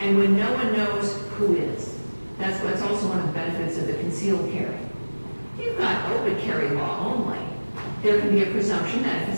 when no one knows who is? That's also one of the benefits of the concealed carry. You've got open carry law only. There can be a presumption that if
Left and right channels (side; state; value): both; inverted; correlation -1.00